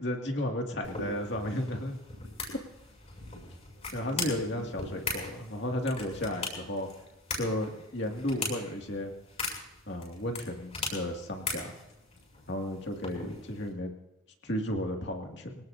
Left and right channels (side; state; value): both; normal; correlation 0.34